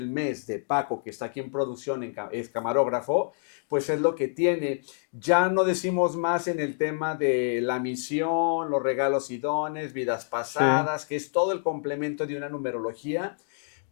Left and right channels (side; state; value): right; silent; 60 dB below the other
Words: mes de Paco, que está aquí en producción, es camarógrafo, pues es lo que tiene. Ya no decimos más en el tema de la misión, los regalos y dones, vidas Sí. pasadas, que es todo el complemento de una numerología,